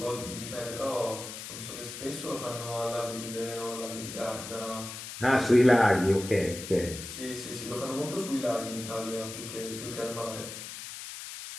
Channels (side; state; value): left; noise; hiss, 9 dB below the sound